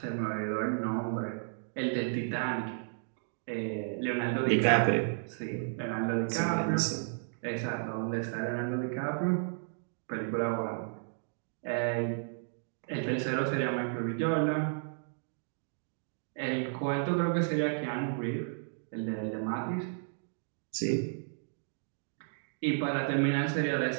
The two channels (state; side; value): silent; left; digital silence